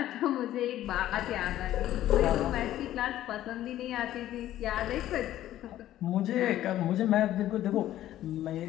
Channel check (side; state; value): right; quieter; 13.3 dB